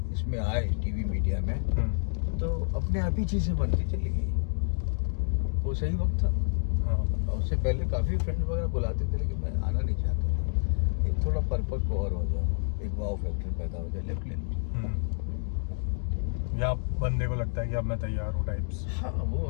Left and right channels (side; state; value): right; silent; digital silence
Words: इसमें आए टीवी मीडिया में, तो अपने आप ही चीज़ें बनती चली गई। वो सही वक्त था। और उससे पहले काफ़ी फ्रेंड वगैरह बुलाते थे, लेकिन मैं आना नहीं चाहता था। एक थोड़ा परिपक्व और हो जाओ, एक वाव फैक्टर पैदा हो जाए, लेफ्ट ले लो। या बंदे को लगता है कि अब मैं तैयार हूँ टाइप्स। हाँ, वो